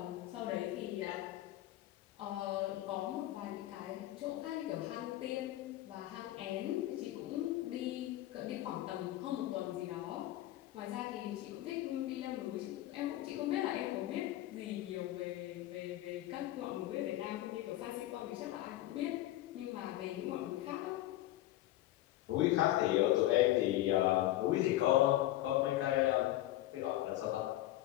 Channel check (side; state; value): right; quieter; 15.1 dB